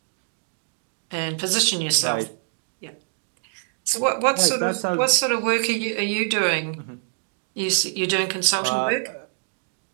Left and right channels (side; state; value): left; silent; digital silence